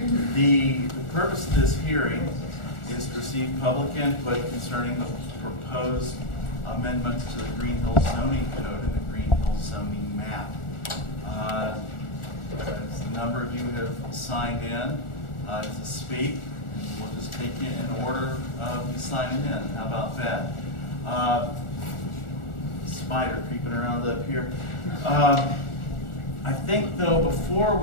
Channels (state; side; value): late; right; 1.4 ms